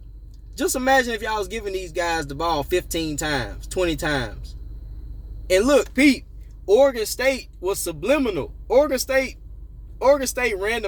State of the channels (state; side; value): identical; both; correlation 1.00